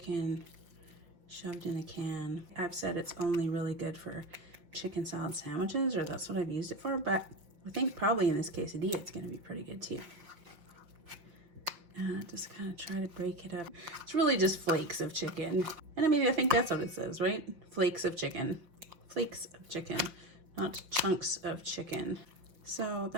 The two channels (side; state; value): left; late; 5.7 ms